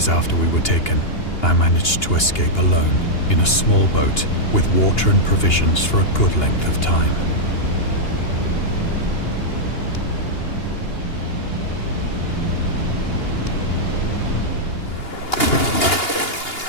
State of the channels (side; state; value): right; late; 2.8 ms